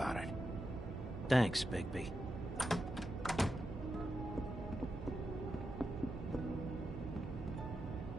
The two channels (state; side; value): normal; both; correlation 0.87